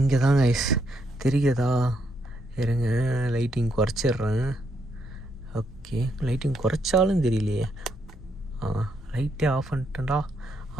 தான் கைஸ் தெரியுதா? இருங்க, லைட்டிங் குறைச்சிட்றேன். ஓகே, லைட்டிங் குறைச்சாலும் தெரியலையே. லைட்டே ஆஃப் பண்ணிட்டேன்டா.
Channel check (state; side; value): normal; both; correlation 0.76